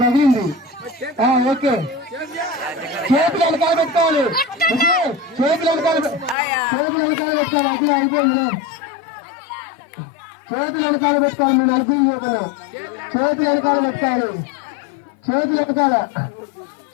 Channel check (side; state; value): right; drops out; at 6.4 s